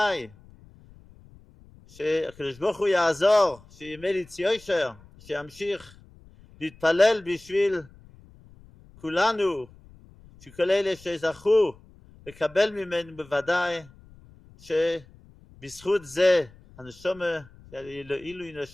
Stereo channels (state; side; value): noise; left; rumble, 24 dB below the sound